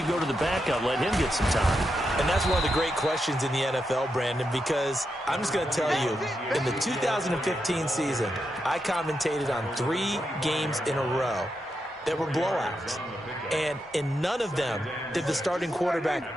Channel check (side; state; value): both; normal; correlation 0.85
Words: go to the backup? Let him get some time. And that's one of the great questions in the NFL, Brandon, because I'm just going to tell you, in the 2015 season, I commentated on 3 games in a row that were blowouts. And in none of them did the starting